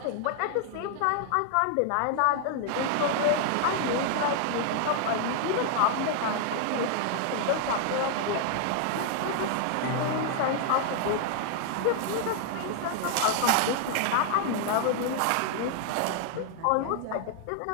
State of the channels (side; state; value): both; different; correlation 0.00